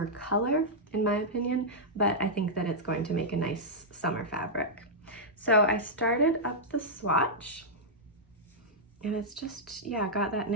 color, in my opinion, but I think that it's going to make a nice summer fabric. So I started up the swatch, and it's just, yeah, got that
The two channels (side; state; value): both; normal; correlation -0.09